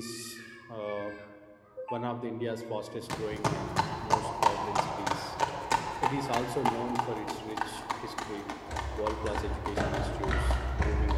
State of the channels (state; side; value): identical; both; correlation 1.00